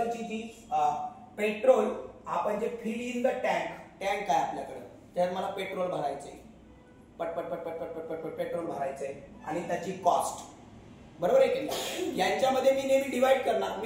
जी पेट्रोल आपण जे फिल इन द टँक आहे आपल्याकडे, त्यात मला पेट्रोल भरायचंय, पटपट पटपट पटपट पटपट पेट्रोल भरायचंय आणि त्याची कॉस्ट, बरोबर आहे की? यांच्यामध्ये मी नेहमी डिवाइड करणार.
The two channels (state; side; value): identical; both; correlation 1.00